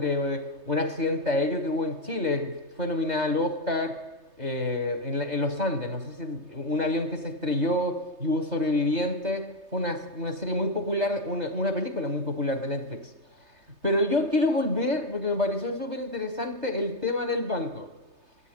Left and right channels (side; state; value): left; late; 3.3 ms